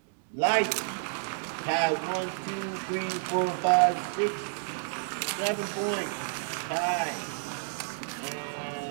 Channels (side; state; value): left; silent; digital silence